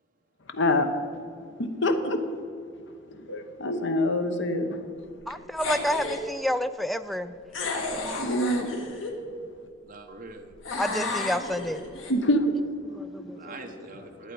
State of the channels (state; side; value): normal; both; correlation 0.36